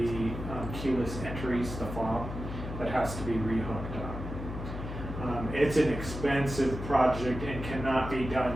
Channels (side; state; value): left; noise; hum, 7 dB below the sound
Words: keyless entries, the fob, that has to be rehooked up. It's an expensive project and cannot be done